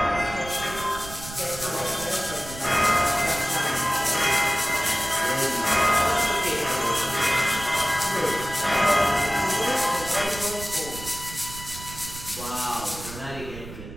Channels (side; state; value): right; noise; rumble, 13 dB below the sound